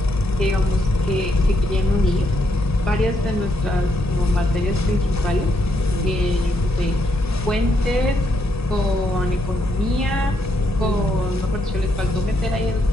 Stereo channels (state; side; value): normal; both; correlation 0.77